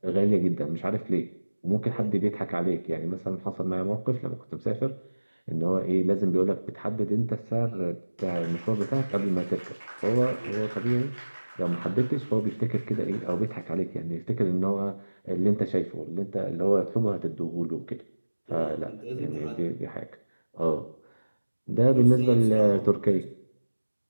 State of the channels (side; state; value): both; inverted; correlation -1.00